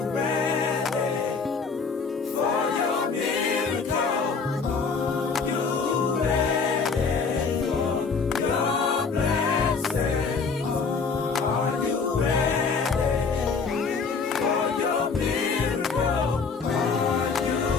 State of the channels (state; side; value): quieter; right; 5.0 dB